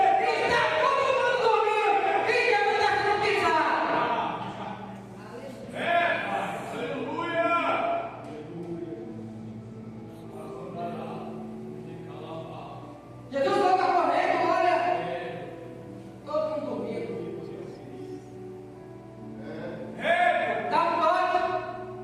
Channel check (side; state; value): both; identical; correlation 1.00